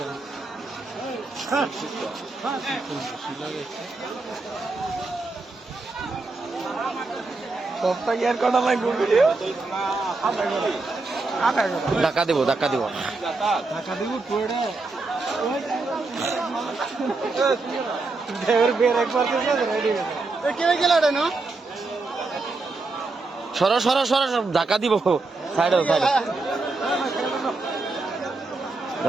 সবটা কি আর কটা লাগবে ভিডিও ধাক্কা দিব ধাক্কা দিব পুরোটা ড্রাইভার বের একবার রেডি কে গেল না সরো সরো সরো ধাক্কা দিব সাইডে সাইডে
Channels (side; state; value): left; quieter; 3.6 dB